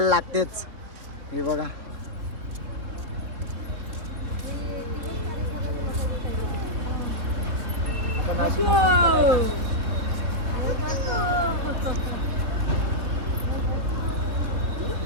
लागतेच. हे बघा,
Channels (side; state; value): left; late; 3.5 ms